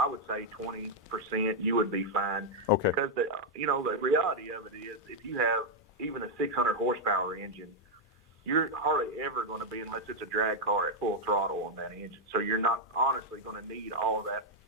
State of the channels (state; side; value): normal; both; correlation -0.02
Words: would say 20%, you would be fine. Okay. Because the reality of it is, if you have even a 600 horsepower engine, you're hardly ever going to be, unless it's a drag car, at full throttle on that engine. So you're not honestly going to need all that